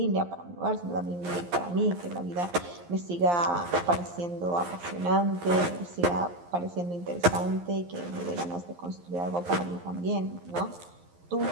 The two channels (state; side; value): late; left; 11 ms